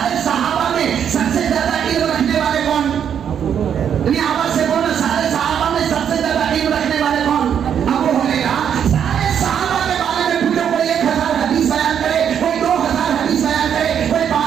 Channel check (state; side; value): quieter; left; 8.5 dB